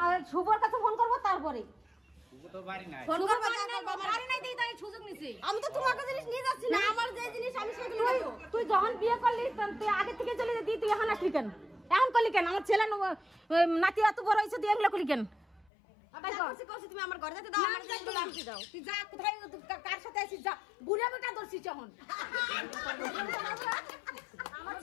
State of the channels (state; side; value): drops out; right; at 15.7 s